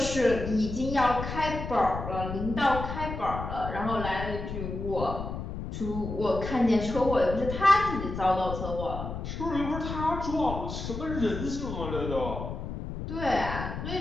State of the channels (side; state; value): left; noise; rumble, 6 dB below the sound